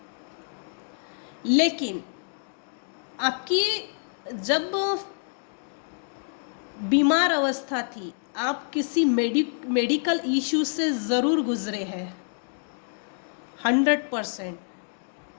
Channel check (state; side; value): silent; right; digital silence